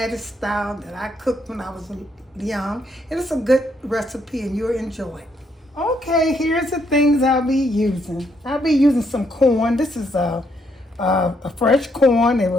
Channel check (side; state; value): both; normal; correlation 0.74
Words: style, that I cooked when I was young, and it's a good recipe and you'll enjoy it. Okay, here's the things I'll be using. I'll be using some corn. This is a fresh corn. It